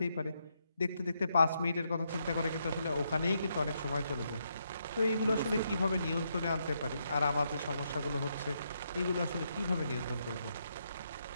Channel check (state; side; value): inverted; both; correlation -0.79